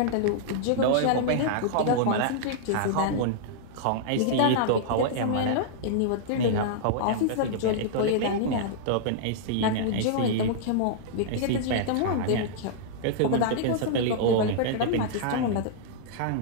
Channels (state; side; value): different; both; correlation -0.02